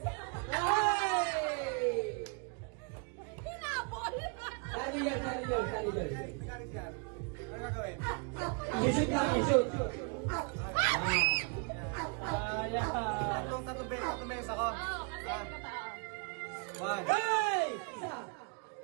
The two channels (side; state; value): left; quieter; 34.2 dB